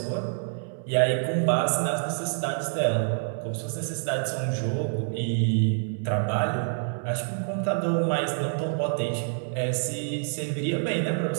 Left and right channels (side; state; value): left; silent; 60 dB below the other